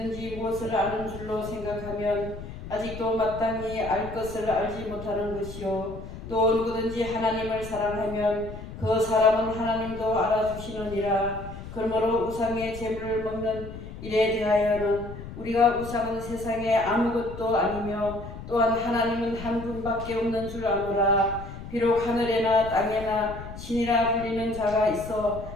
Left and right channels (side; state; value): left; noise; rumble, 12 dB below the sound